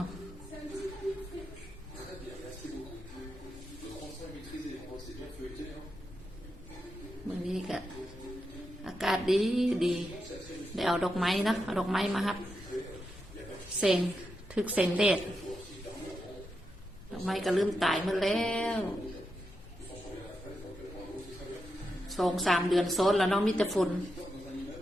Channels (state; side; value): noise; left; rumble, 19 dB below the sound